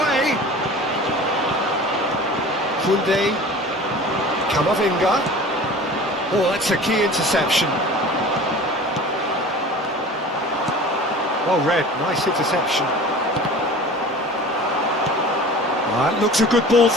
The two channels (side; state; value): both; normal; correlation 0.40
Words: Kunde. Kamavinga. Oh, that's a key interception. Well read, nice interception. That looks a good ball